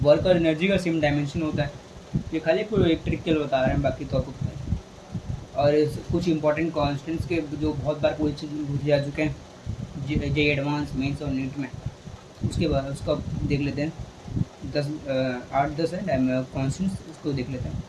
वर्क और एनर्जी का सेम डायमेंशन होता है। ये खाली एक ट्रिक के लिए बता रहे हैं, बाकी तो आपको पता है। और कुछ इंपॉर्टेंट कॉन्स्टेंट्स के जो बहुत बार पूछे जा चुके हैं जे एडवांस, मेंस और नीट में, उसके बाद उसका देख लेते हैं। 8-10 है कॉन्स्टेंट्स, उसको देख लेते हैं।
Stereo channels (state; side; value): identical; both; correlation 1.00